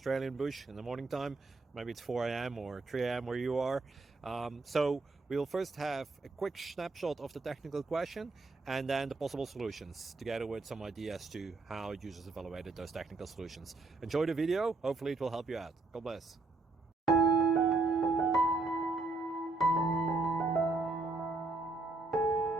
bush in the morning time. Maybe it's 4 a.m. or 3 a.m. where you are. So we'll first have a quick snapshot of the technical question and then the possible solutions, together with some ideas to how users evaluated those technical solutions. Enjoy the video, hopefully it will help you out. God bless.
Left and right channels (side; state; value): left; quieter; 3.4 dB